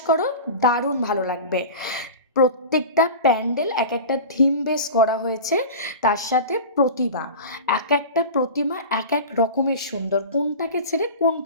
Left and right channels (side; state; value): both; inverted; correlation -0.32